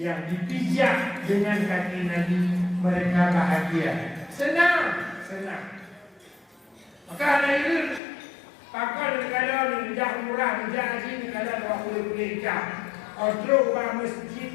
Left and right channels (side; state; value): right; drops out; at 8.0 s